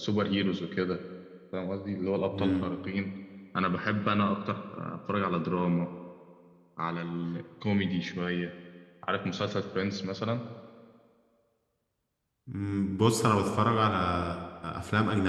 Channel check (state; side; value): identical; both; correlation 1.00